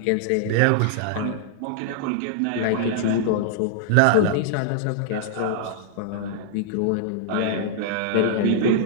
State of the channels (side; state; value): both; different; correlation -0.01